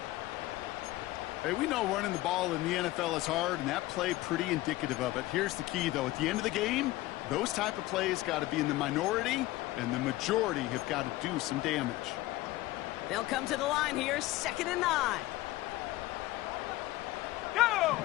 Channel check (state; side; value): quieter; right; 17.7 dB